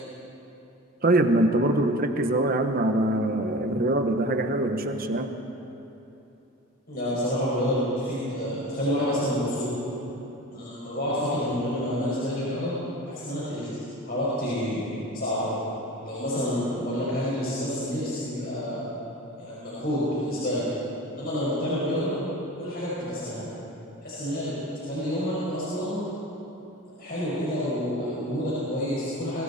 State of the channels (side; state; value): both; normal; correlation 0.35